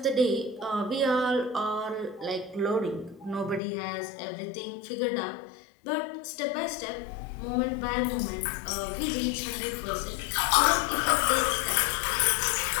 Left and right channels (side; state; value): right; drops out; at 3.6 s